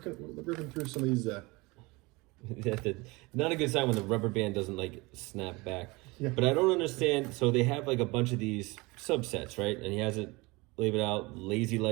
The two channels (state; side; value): quieter; left; 24.2 dB